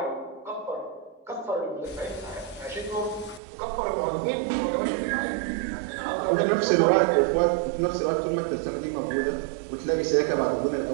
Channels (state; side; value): drops out; left; at 3.4 s